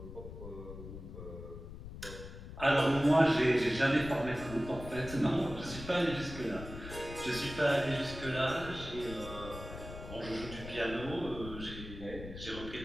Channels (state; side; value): noise; left; rumble, 11 dB below the sound